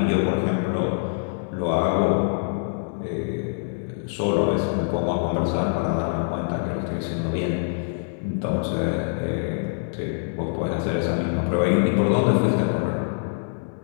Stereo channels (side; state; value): right; silent; digital silence